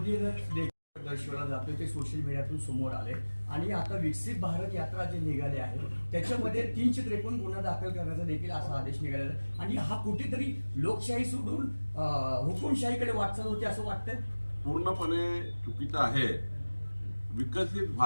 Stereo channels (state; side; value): inverted; both; correlation -1.00